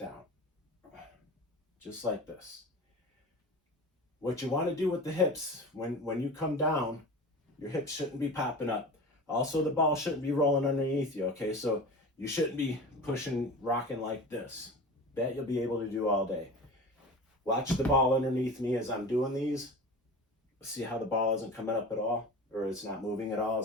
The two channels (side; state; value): both; normal; correlation 0.34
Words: just like this. What you want to do with the hips, when you come down, your hips shouldn't be popping up. Also, the ball shouldn't be rolling underneath you, okay? So you shouldn't be pushing, rocking like this. That you'll be able to do all day. Watch the ball underneath me as I'm doing these. See how the ball isn't coming up at all, or it's not moving at all